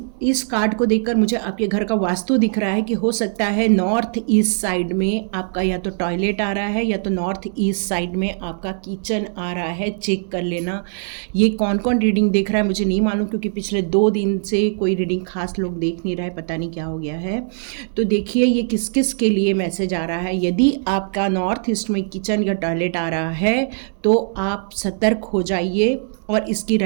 कार्ड को देखकर मुझे आपके घर का वास्तु दिख रहा है कि हो सकता है नॉर्थ ईस्ट साइड में आपका या तो टॉयलेट आ रहा है या तो नॉर्थ ईस्ट साइड में आपका किचन आ रहा है। चेक कर लेना। ये कौन कौन रीडिंग देख रहा है मुझे नहीं मालूम, क्योंकि पिछले 2 दिन से कोई रीडिंग खास लोग देख नहीं रहे, पता नहीं क्या हो गया है। तो देखिए ये किस किस के लिए मैसेज आ रहा है। यदि आपका नॉर्थ ईस्ट में किचन या टॉयलेट आ रहा है तो आप सतर्क हो जाइए, और इसकी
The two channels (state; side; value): silent; left; digital silence